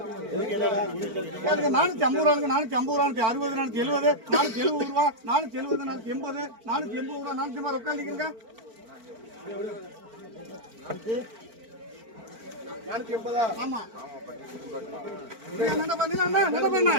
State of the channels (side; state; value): left; late; 4.5 ms